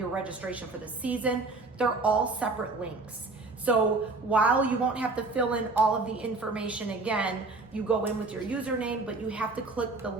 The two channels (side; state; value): left; quieter; 3.5 dB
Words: registration for the season, they're all separate links. So while you won't have to fill in all of the information again, you go in with your username, but you have to click the